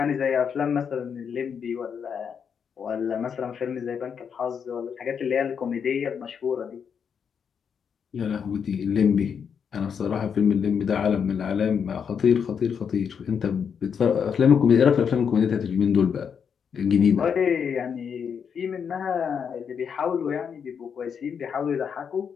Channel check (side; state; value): right; quieter; 7.0 dB